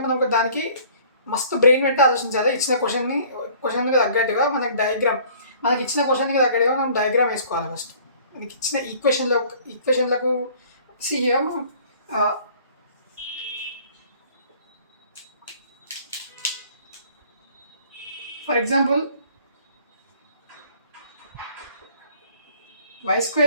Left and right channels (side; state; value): both; inverted; correlation -0.53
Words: మనం దానికి మస్తు బ్రెయిన్ పెట్టి ఆలోచించాలి. ఇచ్చిన క్వశ్చన్కి తగ్గట్టుగా మనకి ఇచ్చిన క్వశ్చన్కి తగ్గట్టుగా మనం డయాగ్రామ్ వేసుకోవాలి. ఫస్ట్ మనకి ఇచ్చిన ఈక్వేషన్లకు ఫర్ ఎగ్జాంపుల్ y² =